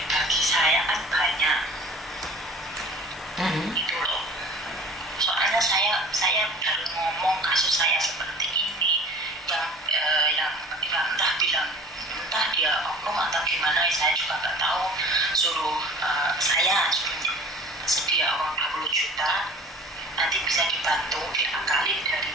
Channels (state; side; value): normal; both; correlation 0.45